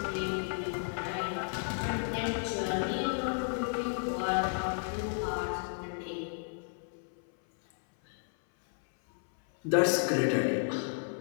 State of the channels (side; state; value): right; silent; 56 dB below the other